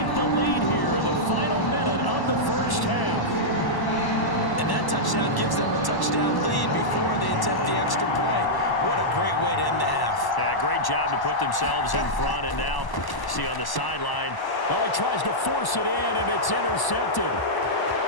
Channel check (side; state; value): right; late; 1.0 ms